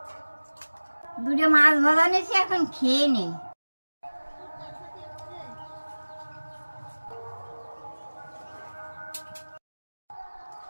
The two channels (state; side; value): inverted; both; correlation -1.00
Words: দুটো মাছ ভাজা নিয়েছি, এখন খেয়ে নেই।